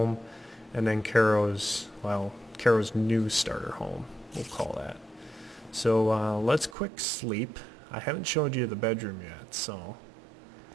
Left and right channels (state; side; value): drops out; left; at 6.8 s